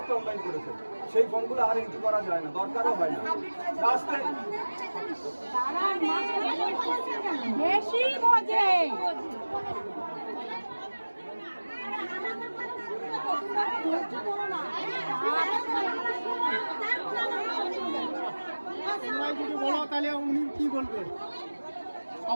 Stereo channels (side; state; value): both; inverted; correlation -1.00